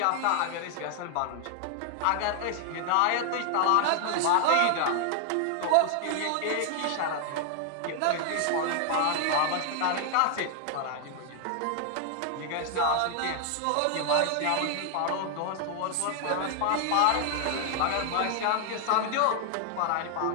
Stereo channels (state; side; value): different; both; correlation 0.00